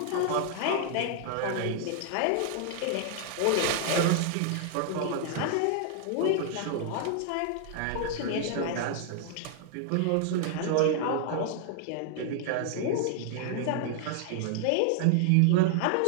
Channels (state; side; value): different; both; correlation 0.00